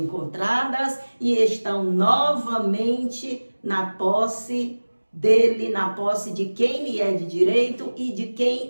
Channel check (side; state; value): both; inverted; correlation -1.00